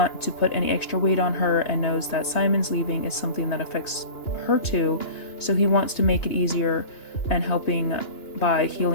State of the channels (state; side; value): late; right; 2.9 ms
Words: to put any extra weight on her and knows that Simon's leaving is something that affects her too, so he wants to make it easier and helping by